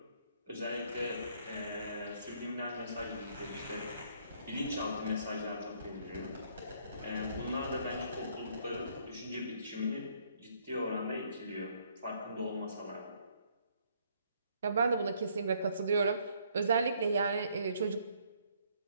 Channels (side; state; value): both; inverted; correlation -0.66